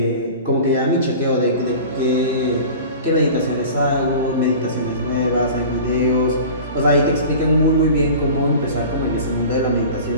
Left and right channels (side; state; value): both; inverted; correlation -0.38